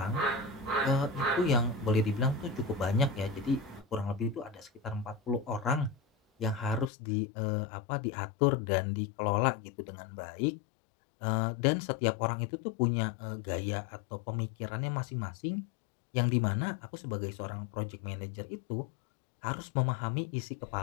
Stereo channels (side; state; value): right; drops out; at 6.9 s